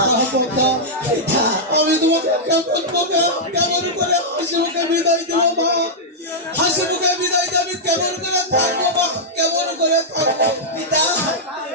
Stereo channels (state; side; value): normal; both; correlation -0.08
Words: পিতা, আমি তোমাকে কেমন করে হাসি মুখে বিদায় দেবো মা? হাসি মুখে বিদায় দিয়ে আমি কেমন করে থাকবো মা? কেমন করে থাকবো পিতা,